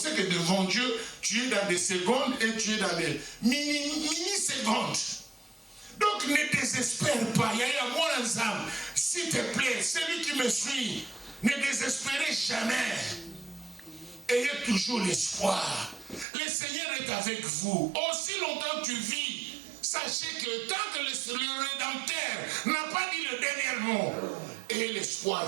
c'est que devant Dieu, tu es dans des secondes et tu es dans des mini-secondes. Donc ne désespère pas. Il y a moi ensemble. S'il te plaît, celui qui me suit, ne désespérez jamais. Ayez toujours l'espoir. Le Seigneur est avec vous. Aussi longtemps que tu vis, sachez que tant que le Rédempteur n'a pas dit le dernier mot, ayez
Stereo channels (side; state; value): left; drops out; at 16.2 s